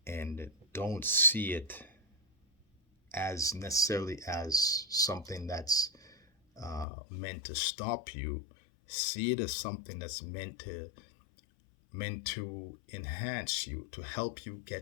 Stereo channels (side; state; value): right; drops out; at 6.9 s